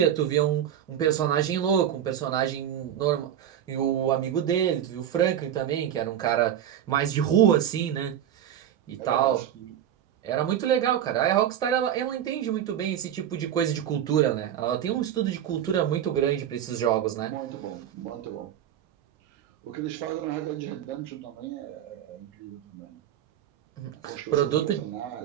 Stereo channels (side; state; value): left; quieter; 10.2 dB